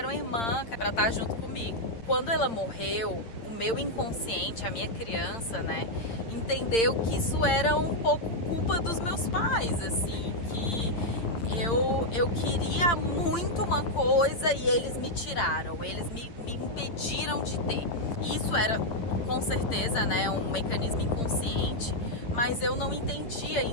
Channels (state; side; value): late; right; 8.8 ms